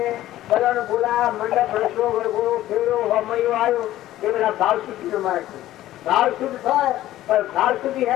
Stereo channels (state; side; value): quieter; right; 14.4 dB